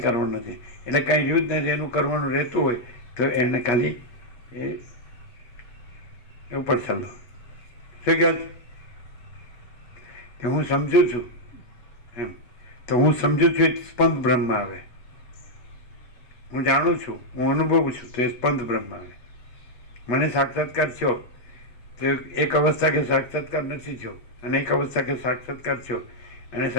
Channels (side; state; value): right; late; 8.3 ms